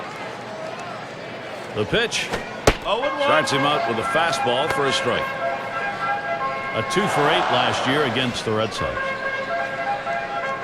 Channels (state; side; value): identical; both; correlation 1.00